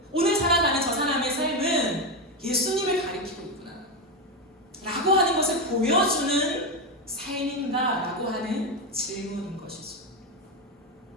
오늘 살아가는 저 사람의 삶은 예수님을 가리키고 있구나 라고 하는 것을 보여주는 삶인가 라고 하는 질문인 것이죠.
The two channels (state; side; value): normal; both; correlation 0.11